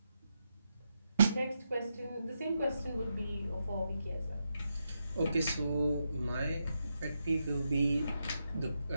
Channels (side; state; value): both; inverted; correlation -0.84